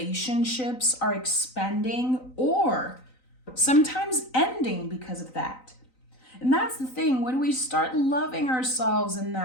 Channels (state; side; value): late; right; 3.9 ms